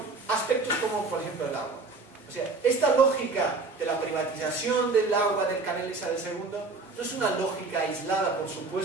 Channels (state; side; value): quieter; left; 3.8 dB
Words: a aspectos como, por ejemplo, el agua. O sea, esta lógica de la privatización del agua del canal Isabel II no es una lógica aislada, por